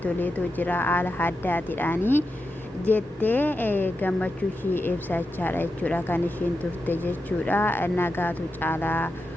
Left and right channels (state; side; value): normal; both; correlation 0.89